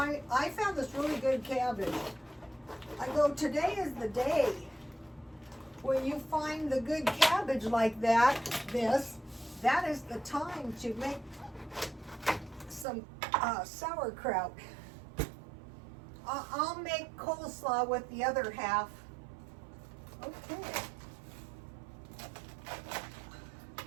found this really good cabbage. I go, today is the day. When you find the good cabbage like that that is the time to make some sauerkraut. I'll make coleslaw with the other half. Okay.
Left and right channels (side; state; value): left; drops out; at 12.9 s